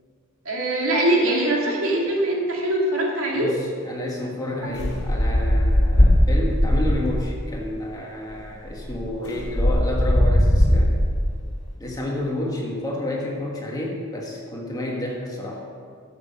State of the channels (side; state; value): both; normal; correlation 0.76